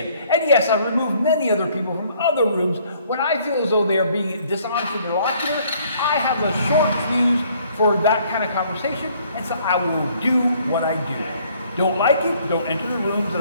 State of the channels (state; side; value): inverted; both; correlation -0.62